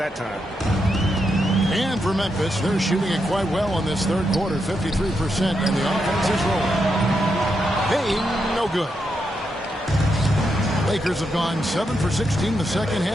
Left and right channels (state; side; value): normal; both; correlation 0.83